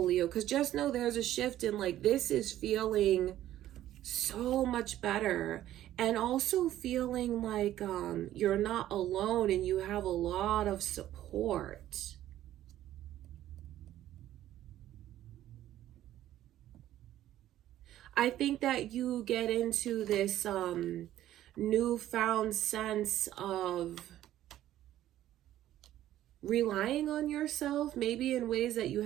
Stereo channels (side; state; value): left; quieter; 13.1 dB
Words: Leo, because just know there's a shift in, like, this is feeling so much better, and also feeling like you're not alone and you have a lot of support. I think that you get into this newfound sense of relying on yourself, maybe in ways that you